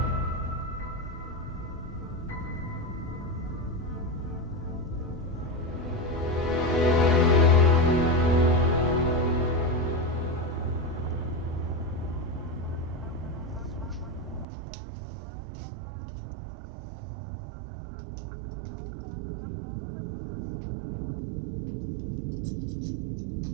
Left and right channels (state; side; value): drops out; left; at 14.5 s